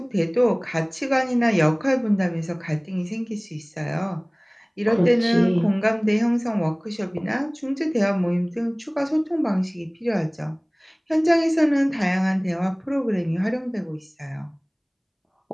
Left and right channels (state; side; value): identical; both; correlation 1.00